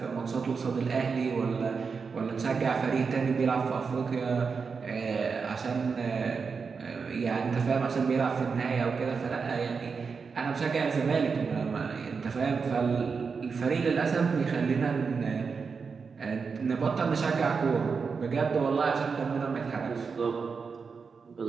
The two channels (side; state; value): left; quieter; 5.3 dB